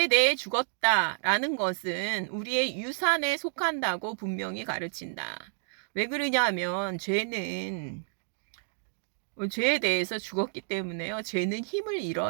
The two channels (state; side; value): silent; left; digital silence